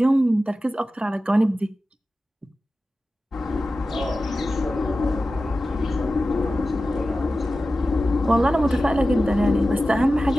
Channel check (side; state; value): both; normal; correlation 0.94